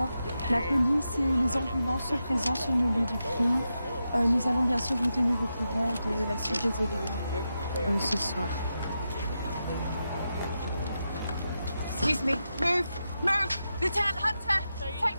La police et les ambulances sont présents sur le lieu du crime. Nous allons bien sûr vous tenir au courant de la suite des événements ce soir. Excuse me. Move! Move! Lieutenant Hunter!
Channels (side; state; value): both; inverted; correlation -0.88